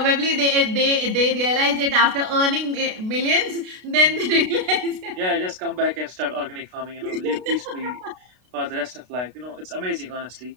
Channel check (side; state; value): left; late; 32 ms